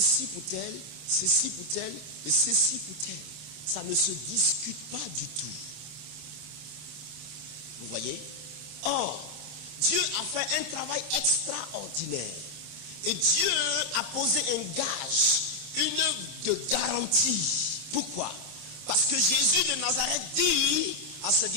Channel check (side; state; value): left; late; 26 ms